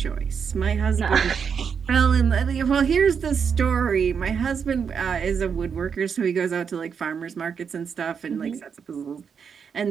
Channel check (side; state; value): left; quieter; 6.7 dB